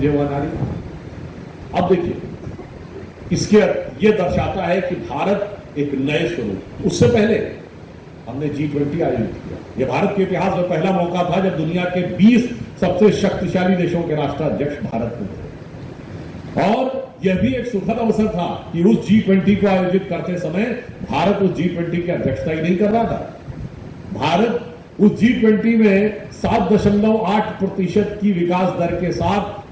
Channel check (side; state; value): both; identical; correlation 1.00